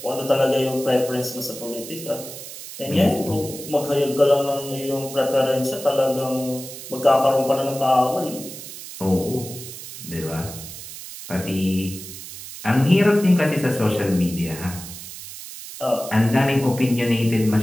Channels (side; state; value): right; noise; hiss, 12 dB below the sound